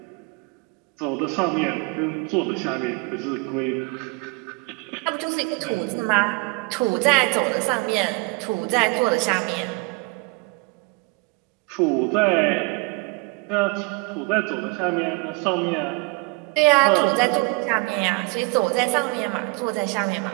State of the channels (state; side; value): quieter; left; 27.5 dB